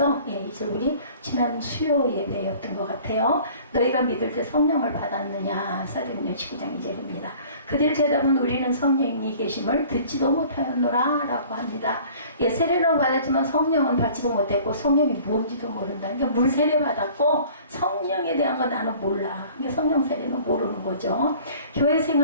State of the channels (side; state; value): both; inverted; correlation -0.49